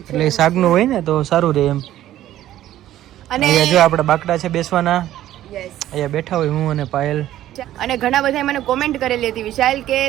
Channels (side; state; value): left; quieter; 13.2 dB